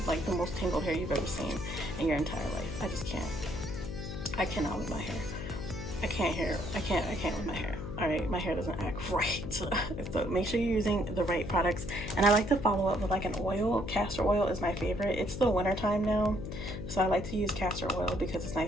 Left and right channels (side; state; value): left; noise; hum, 7 dB below the sound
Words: like the most tangled hair you've ever seen in your entire life. I just can't. I cannot with my hair. I can't with my hair. All right, my hair doesn't act right. So make sure you're using the right products. And I like to follow up with like an oil. Castor oil is my favorite. It's the winter time now, so I like to use castor oil because it's